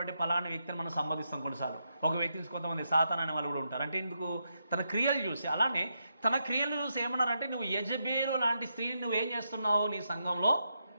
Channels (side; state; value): both; inverted; correlation -0.83